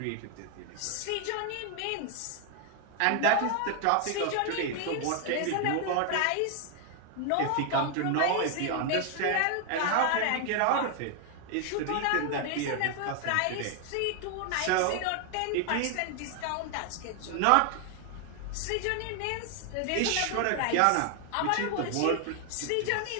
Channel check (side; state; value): both; different; correlation 0.00